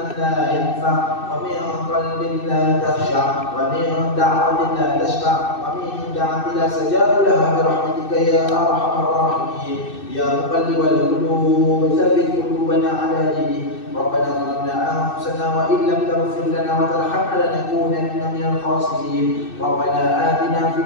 la yanfa' wa min qalbin la takhsha' wa min da'watin la tashfa' wa min da'watin la sajaba laha bi rahmatika ya arhamar rahimin. Ya muqallibal qulub tsabbit qulubana 'ala dinik. ربنا ظلمنا أنفسنا وإن لم تغفر لنا وترحمنا لنكونن من الخاسرين. ربنا آتنا في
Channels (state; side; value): late; right; 2.6 ms